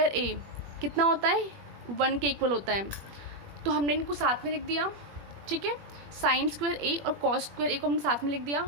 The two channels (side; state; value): left; late; 21 ms